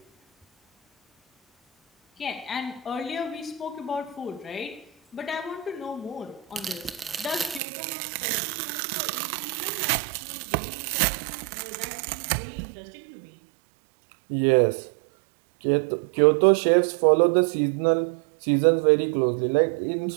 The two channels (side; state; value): left; drops out; at 7.6 s